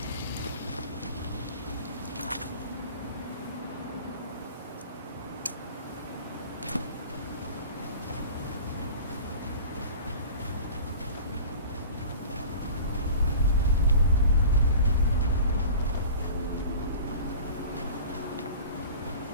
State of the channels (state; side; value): inverted; both; correlation -0.40